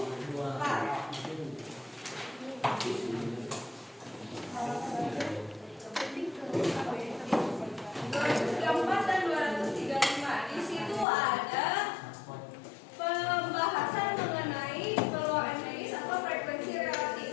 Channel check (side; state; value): right; drops out; at 11.1 s